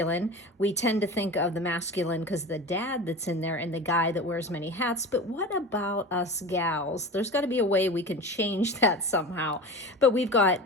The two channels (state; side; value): normal; both; correlation 0.32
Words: We tend to think of the masculine because the dad that's in there and the guy that wears many hats, but what about us gals? There's got to be a way we can change that somehow. But we've